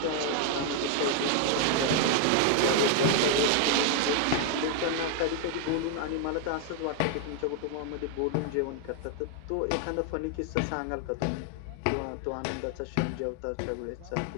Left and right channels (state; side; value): different; both; correlation 0.00